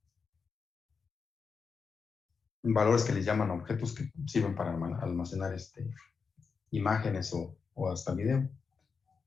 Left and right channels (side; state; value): right; quieter; 5.4 dB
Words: valores que les llaman objetos que sirven para almacenar imágenes o hasta video,